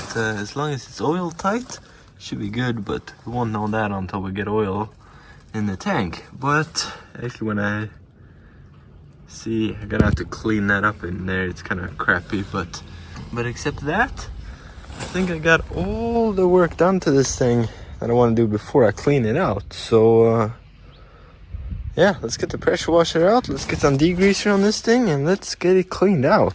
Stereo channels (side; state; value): both; identical; correlation 1.00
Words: as long as it's oil tight, it should be good, but we won't know that until we get oil in the tank. But actually when I see, I'm gonna have to clean that up in there, it's kind of crappy, but except that, I think I got all the work done to this thing that I want to do before I clean it out. So yeah, let's get the pressure washer out, let's get some degreaser on this thing, and let's get it cleaned